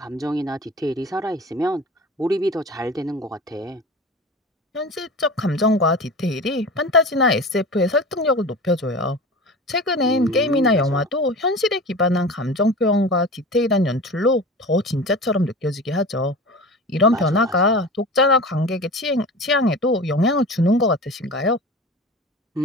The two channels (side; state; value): both; normal; correlation 0.33